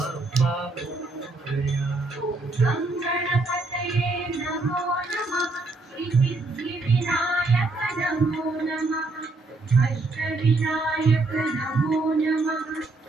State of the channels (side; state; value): left; quieter; 3.2 dB